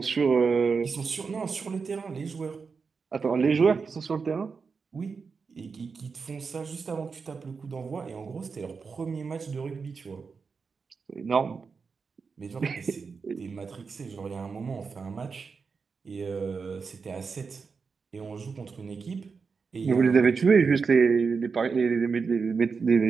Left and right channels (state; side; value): quieter; left; 5.2 dB